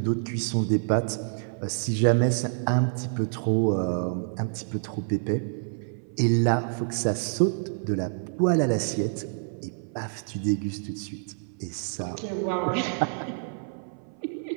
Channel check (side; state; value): left; silent; 58 dB below the other